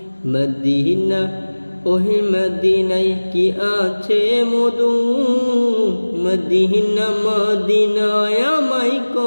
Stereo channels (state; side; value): inverted; both; correlation -1.00